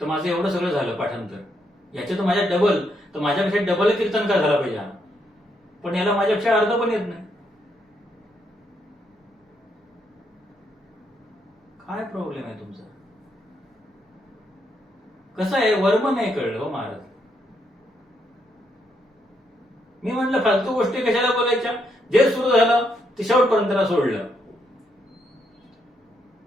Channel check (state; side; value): normal; both; correlation 0.77